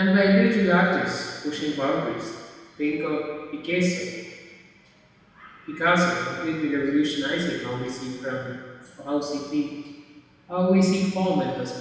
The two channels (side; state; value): both; identical; correlation 1.00